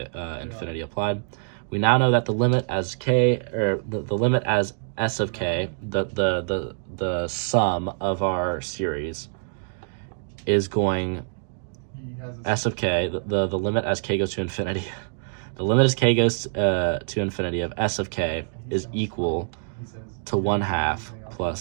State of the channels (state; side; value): silent; left; digital silence